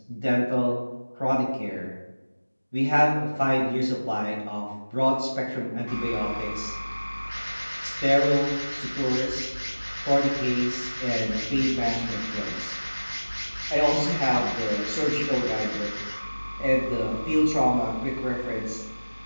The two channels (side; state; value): both; inverted; correlation -1.00